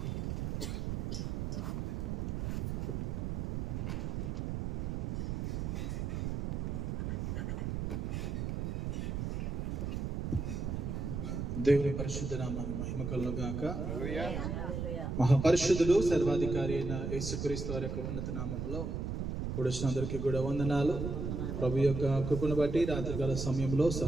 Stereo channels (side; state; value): right; noise; rumble, 2 dB below the sound